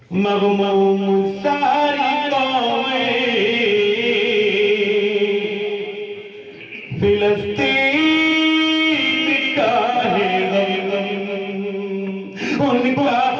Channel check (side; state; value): both; identical; correlation 1.00